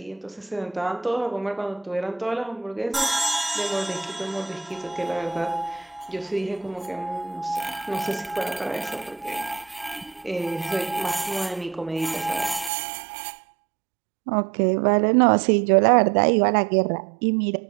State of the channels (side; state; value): left; drops out; at 12.7 s